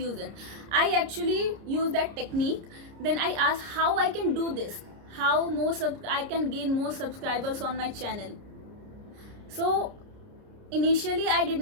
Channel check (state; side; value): late; left; 30 ms